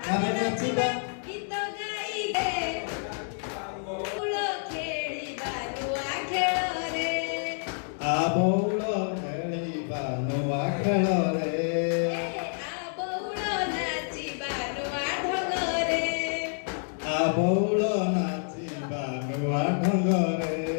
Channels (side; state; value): right; silent; 59 dB below the other